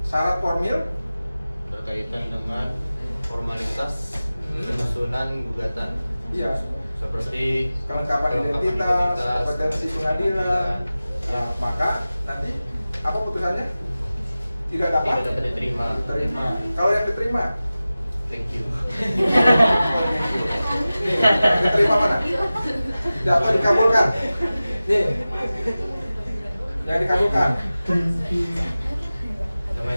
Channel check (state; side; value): inverted; both; correlation -0.96